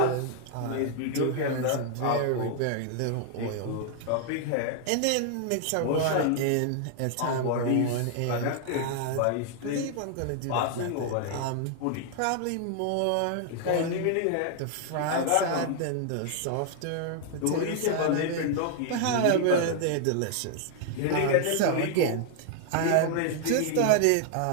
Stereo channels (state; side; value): different; both; correlation 0.00